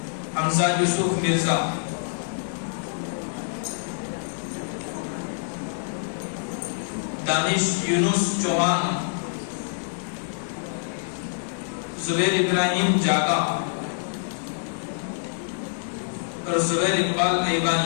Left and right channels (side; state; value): right; silent; digital silence